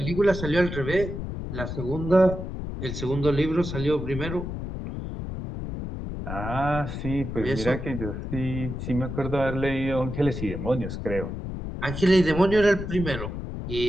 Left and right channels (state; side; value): noise; left; rumble, 6 dB below the sound